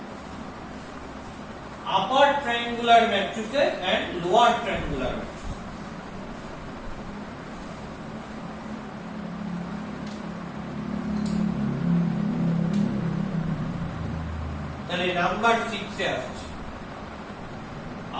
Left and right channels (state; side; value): identical; both; correlation 1.00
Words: upper triangular matrices and lower triangular matrix. তাহলে নাম্বার 6 এ আসছে